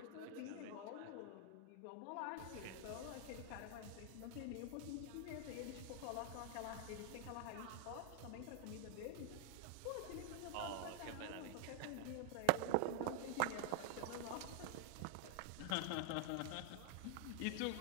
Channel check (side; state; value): both; different; correlation 0.00